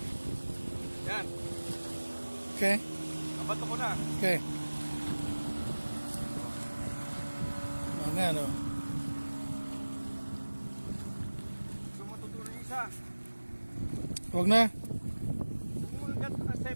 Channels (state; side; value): inverted; both; correlation -1.00